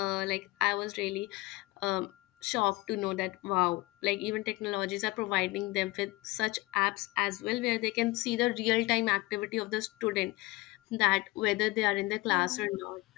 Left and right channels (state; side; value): quieter; right; 21.6 dB